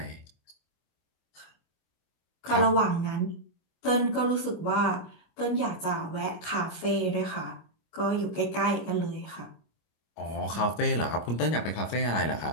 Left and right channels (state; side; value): late; right; 25 ms